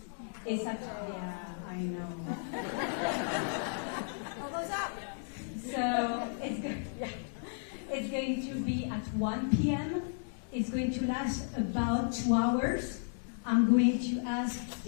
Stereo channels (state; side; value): silent; right; digital silence